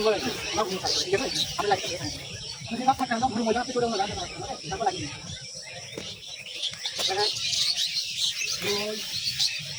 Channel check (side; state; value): both; identical; correlation 1.00